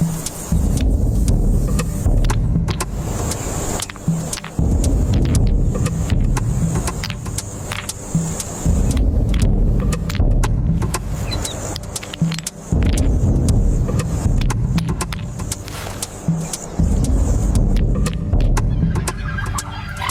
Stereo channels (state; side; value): identical; both; correlation 1.00